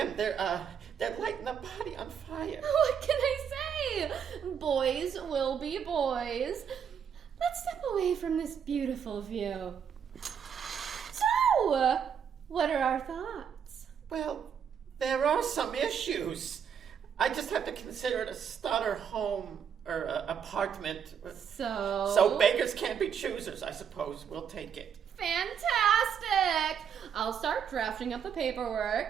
They're lighting the body on fire. What can I say? Boys will be boys. Let's step away from this beautiful view. So, what are our thoughts? Well, there are some issues. I just have to consider it a starter home or apartment. So beggars can't be choosers, I suppose. We'll take it. Fantastic! I'll start drafting up the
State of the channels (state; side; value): quieter; left; 7.7 dB